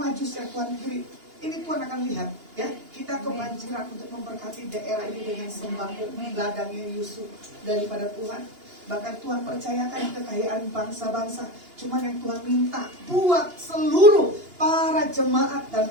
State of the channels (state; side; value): late; left; 2.9 ms